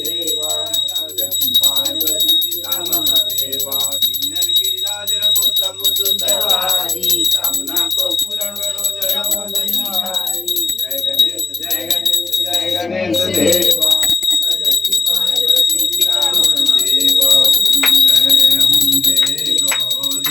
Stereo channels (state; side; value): quieter; right; 3.9 dB